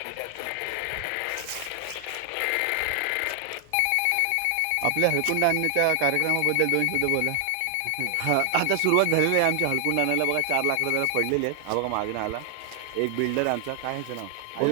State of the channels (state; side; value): different; both; correlation 0.00